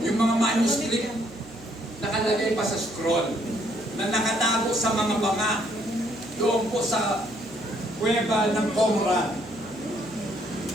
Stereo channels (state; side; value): noise; right; hum, 20 dB below the sound